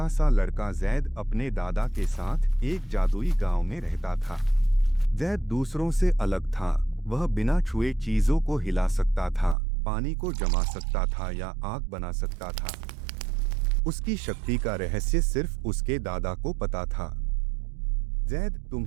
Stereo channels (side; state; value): left; drops out; at 9.6 s